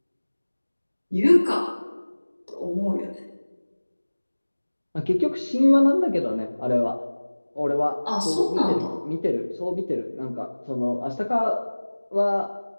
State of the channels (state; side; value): inverted; both; correlation -1.00